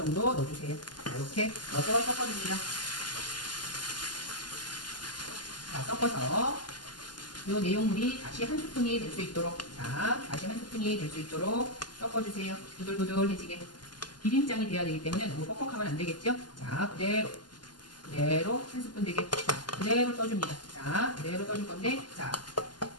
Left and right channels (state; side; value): late; right; 0.71 ms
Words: 넣어주세요. 자, 이렇게 넣어서 섞어줍니다. 자, 섞어서 이 내용물이 다시 한 스푼이 될 수 있도록, 자, 다시 한 스푼이 될 수 있도록 섞어주세요. 부들부들해지게. 비빔장이 돼야 되기 때문에 너무 뻑뻑하면 안 되겠죠? 자, 그대로 한 스푼 되게. 자, 그대로 떠줍니다. 자, 그대로 떠줄 건데, 자,